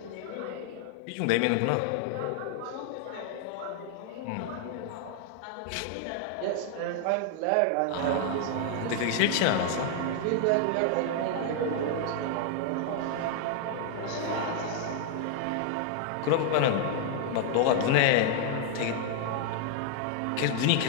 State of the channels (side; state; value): both; different; correlation 0.00